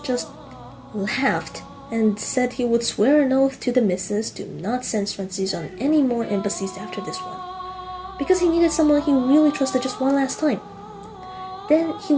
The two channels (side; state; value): both; identical; correlation 1.00